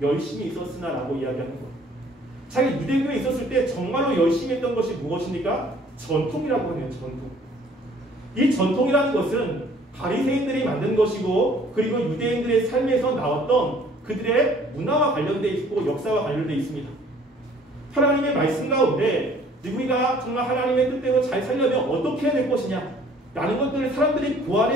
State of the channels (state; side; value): normal; both; correlation 0.56